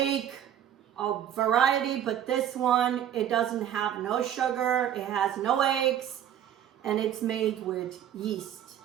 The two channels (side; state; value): left; quieter; 10.3 dB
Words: a variety, but this one, it doesn't have no sugar, it has no eggs, and it's made with yeast.